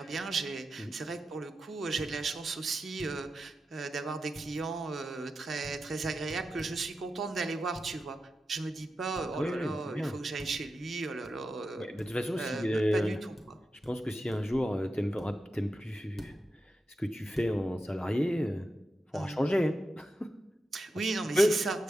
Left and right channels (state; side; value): normal; both; correlation 0.90